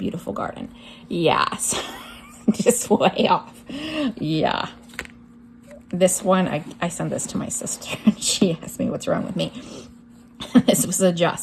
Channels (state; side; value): identical; both; correlation 1.00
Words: garden. Yes. Just way off. Yeah. This one, I sent this to my sister, and she asked me what's wrong with me. This was a